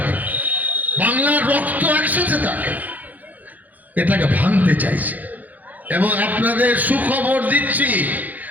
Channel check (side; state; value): left; late; 0.081 ms